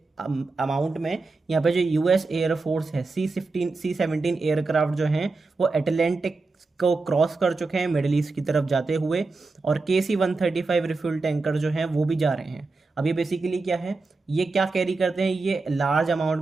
अमाउंट में यहाँ पे जो यूएस एयरफोर्स है, C-17 एयरक्राफ्ट जो हैं वो अटलांटिक को क्रॉस कर चुके हैं मिडिल ईस्ट की तरफ जाते हुए, और KC-135 रिफ्यूल टैंकर जो हैं वो भी जा रहे हैं। अब ये बेसिकली क्या है, ये क्या कैरी करते हैं, ये लार्ज अमाउंट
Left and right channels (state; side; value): quieter; left; 3.7 dB